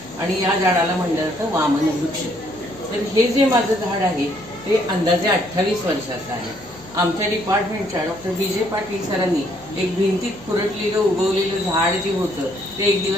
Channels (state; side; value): noise; left; hum, 22 dB below the sound